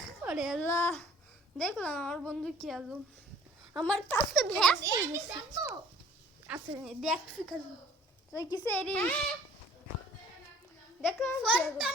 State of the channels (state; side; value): normal; both; correlation 0.53